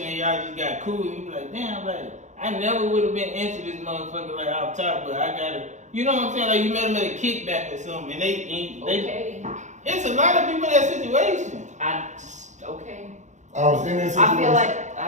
and y'all just got cool and you be like, damn, like I never would have been into this motherfucker like off top, but I gotta, you know what I'm saying? Like you met him at a kickback or something and they Okay. It's a lot of people in that situation. Okay. I was in that situation. I feel like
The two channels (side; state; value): left; late; 0.35 ms